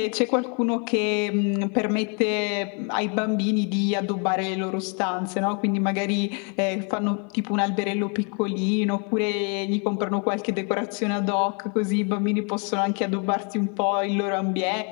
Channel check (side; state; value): right; quieter; 36.5 dB